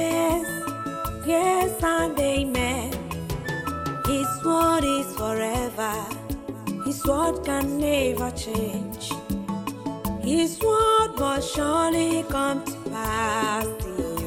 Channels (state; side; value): identical; both; correlation 1.00